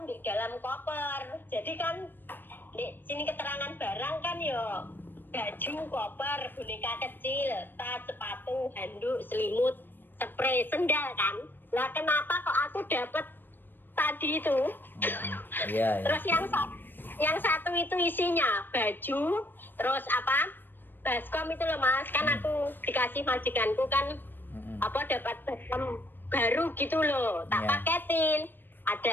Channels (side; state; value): right; late; 0.094 ms